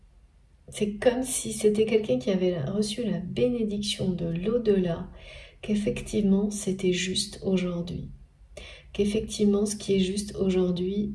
c'est comme si c'était quelqu'un qui avait reçu la bénédiction de l'au-delà, qu'effectivement c'était juste aujourd'hui. Qu'effectivement ce qui est juste aujourd'hui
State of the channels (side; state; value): both; identical; correlation 1.00